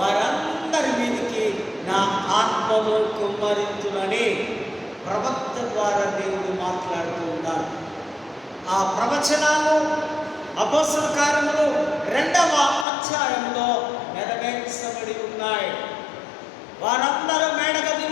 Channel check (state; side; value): drops out; right; at 12.9 s